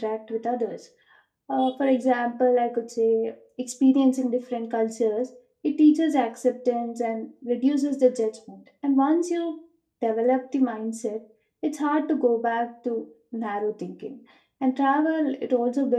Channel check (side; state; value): both; identical; correlation 1.00